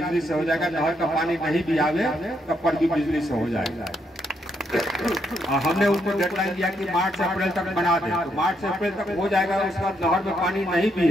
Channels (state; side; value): normal; both; correlation 0.77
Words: से हो जाएगा। नहर का पानी नहीं भी आवे तब पर भी बिजली से हो जाएगा। हमने उनको डेडलाइन दिया कि मार्च से अप्रैल तक बना दें, तो मार्च से अप्रैल तक हो जाएगा। उसके बाद नहर में पानी नहीं भी